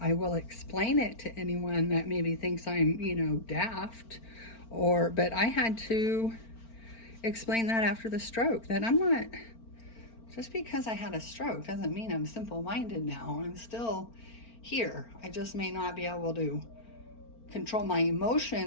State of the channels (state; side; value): late; right; 4.4 ms